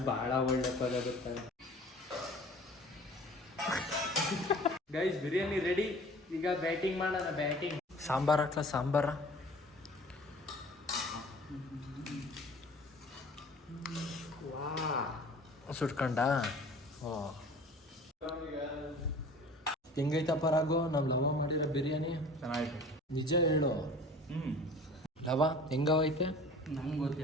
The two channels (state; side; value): normal; both; correlation 0.45